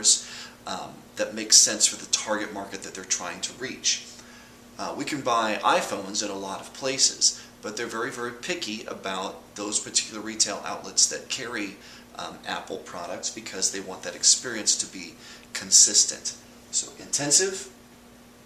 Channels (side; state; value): both; identical; correlation 1.00